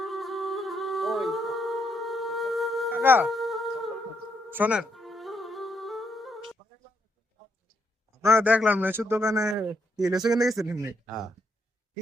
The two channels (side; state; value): both; normal; correlation 0.77